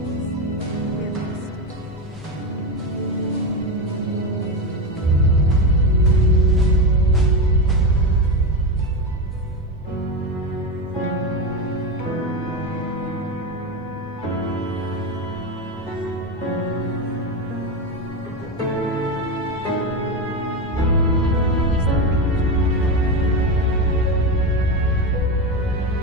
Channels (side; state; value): both; normal; correlation 0.15